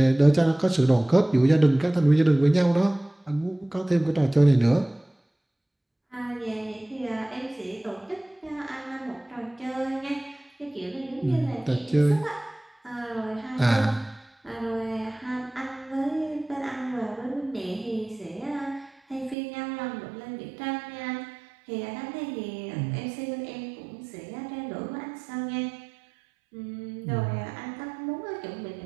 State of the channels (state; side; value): drops out; left; at 19.4 s